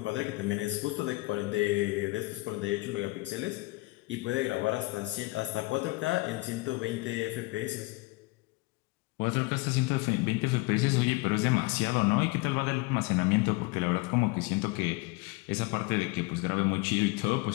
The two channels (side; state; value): right; quieter; 23.4 dB